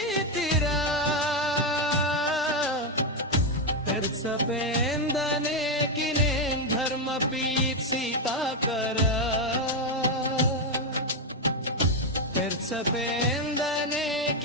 पेर्सपेंदने किने धर्म पीत सीता करा पेर्सपेंदने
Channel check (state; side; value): normal; both; correlation 0.05